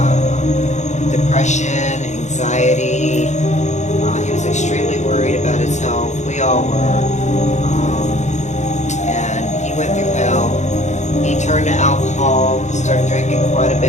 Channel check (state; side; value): late; right; 0.34 ms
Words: depression, anxiety. He was extremely worried about his health. We all were. And he went through hell. He turned to alcohol, started drinking quite a